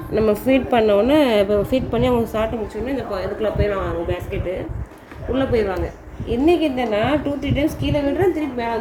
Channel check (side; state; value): both; identical; correlation 1.00